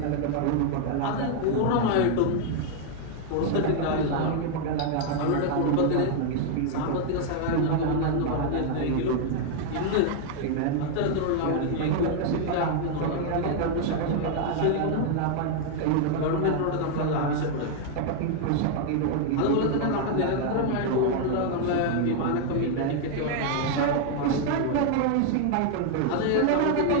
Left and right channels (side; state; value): both; different; correlation 0.00